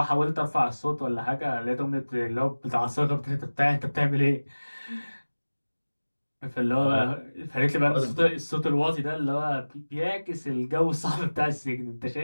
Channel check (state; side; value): inverted; both; correlation -1.00